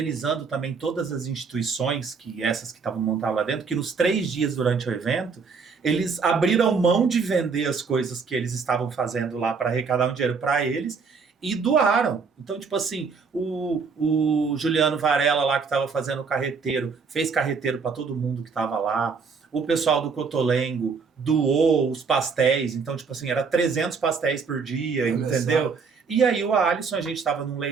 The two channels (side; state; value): left; quieter; 5.3 dB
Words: também todas as instituições, essas que estavam montadas lá dentro, que nos 3 dias durante o evento, eles abriram mão de vender as coisas que eles estavam fazendo lá para arrecadar um dinheiro para eles, e doaram. Então, tipo assim, o Juliano Varela lá que estava fazendo o carreteiro, fez carreteiro para todo mundo que estava lá. O pessoal do Cotolengo doou os pastéis. Então, tipo assim, era 300 pastéis por dia, entendeu? E aí o Alisson, a gente estava num